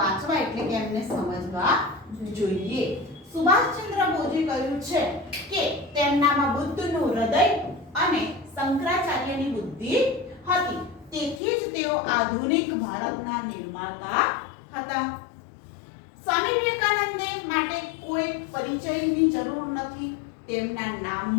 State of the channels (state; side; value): drops out; right; at 11.4 s